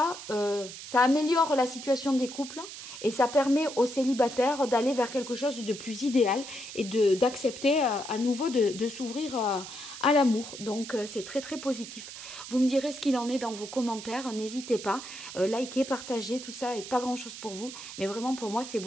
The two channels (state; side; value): noise; right; hiss, 12 dB below the sound